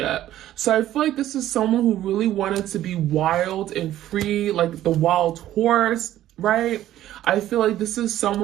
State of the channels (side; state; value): left; quieter; 13.1 dB